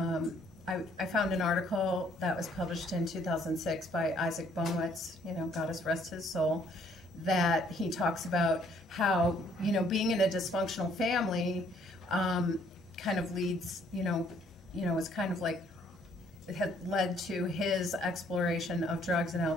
I found an article that was published in 2006 by Isaac Bonewitz, God rest his soul, that he talks about how, being in a dysfunctional family kind of leads, is kind of like, it had led to his exploration of drugs and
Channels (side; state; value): both; normal; correlation 0.64